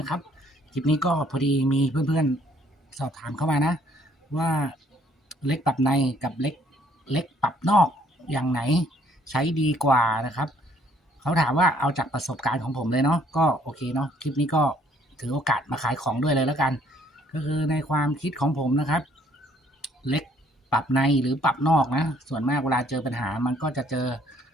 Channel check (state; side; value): normal; both; correlation 0.63